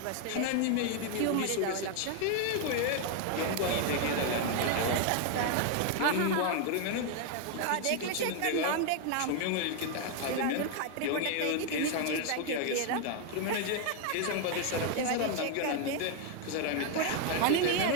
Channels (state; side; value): different; both; correlation 0.01